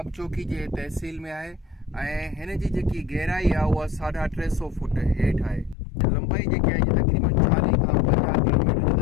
चौकी जे तहसील में आहे ऐं हिन जी जेकी गहराई आहे उहा 350 फुट हेठि आहे। लंबाई जेकी आहे तक़रीबन 40 खां 50 किलोमीटर जो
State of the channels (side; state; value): right; drops out; at 5.8 s